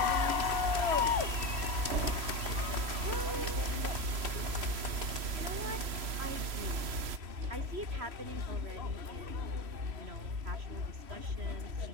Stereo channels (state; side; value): late; left; 3.0 ms